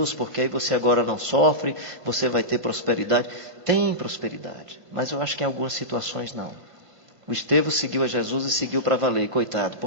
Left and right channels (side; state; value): left; late; 1.5 ms